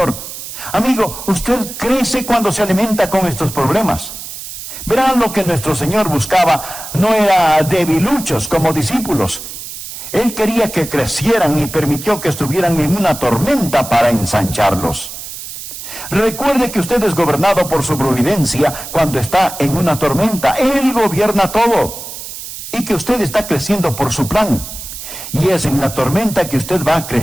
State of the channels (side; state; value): right; noise; hiss, 10 dB below the sound